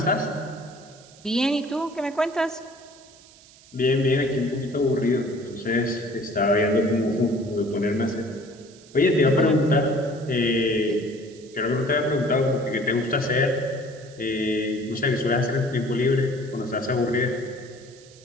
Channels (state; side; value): noise; right; hiss, 24 dB below the sound